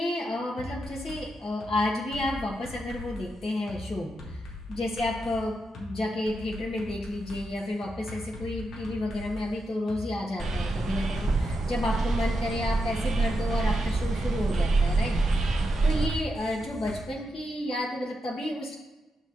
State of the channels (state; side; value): normal; both; correlation 0.85